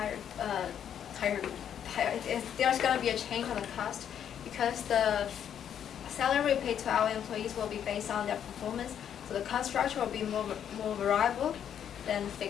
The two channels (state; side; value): quieter; right; 9.1 dB